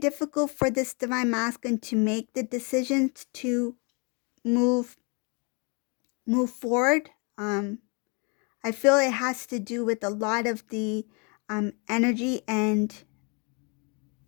for this Divine Masculine to make the decisions to move forward. I feel it has to do with a lot of the energy, and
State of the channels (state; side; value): quieter; right; 33.8 dB